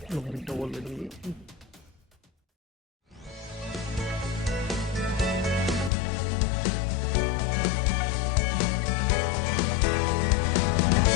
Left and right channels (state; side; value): drops out; right; at 5.9 s